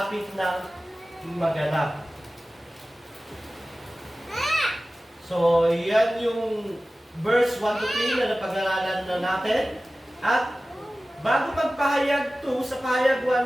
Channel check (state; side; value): normal; both; correlation 0.96